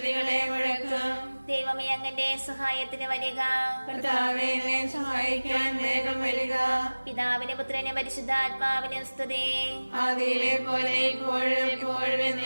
മുഴക്കും. ദൈവമേ, അങ്ങന്റെ സഹായത്തിന് വരിക. കർത്താവേ, എന്നെ സഹായിക്കാൻ വേഗം വരിക. പിതാവിനും പുത്രനും പരിശുദ്ധാത്മാവിനും സ്തുതി. ആദിയിലെ പോലെ ഇപ്പോഴും എപ്പോഴും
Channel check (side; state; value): both; inverted; correlation -1.00